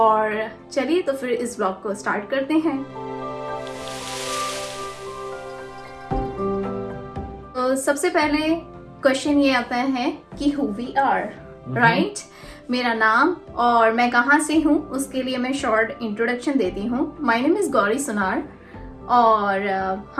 चलिए तो फिर इस ब्लॉग को स्टार्ट करते हैं। तो सबसे पहले क्वेश्चन ये आता है कि हु वी आर, राइट। मेरा नाम और मैं कहाँ से हूँ उसके लिए मैं शॉर्ट इंट्रोडक्शन देती हूँ। माय नेम इज़ गौरी सुनार और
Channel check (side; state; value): both; identical; correlation 1.00